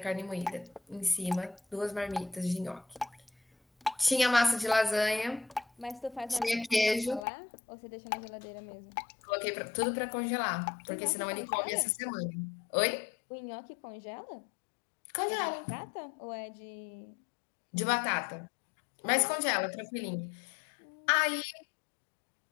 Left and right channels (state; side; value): drops out; right; at 7.2 s